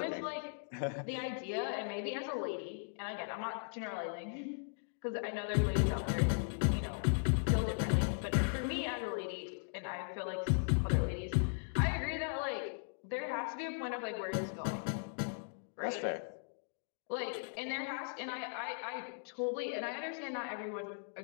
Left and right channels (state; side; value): silent; right; digital silence